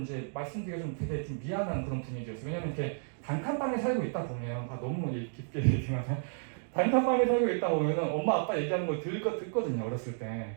말씀드리기가 좀 되게 좀 미안한 그런 분위기였어요. 왜냐면 이렇게 단칸방에 살고 있다 보면 너무 깊게 얘기하면 단칸방에 살고 있다 보면은 엄마 아빠 얘기하는 걸 듣거든요, 어렸을 때.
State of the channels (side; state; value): left; silent; digital silence